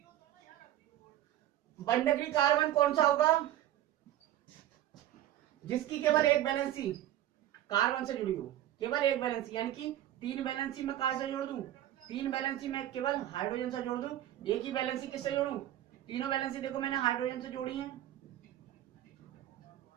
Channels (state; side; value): quieter; left; 13.0 dB